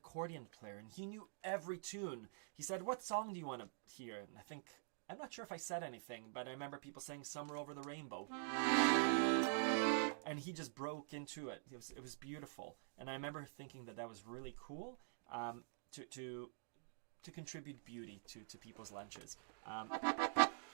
player, and he knew every tune. He said, "What song do you want to hear?" And I'm not sure if I said anything, but I remember people saying "Summer Over the Rainbow." And he just broke into it. It was beautiful, and I remember thinking that was really cool to contribute beauty to people's lunches.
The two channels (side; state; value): left; silent; digital silence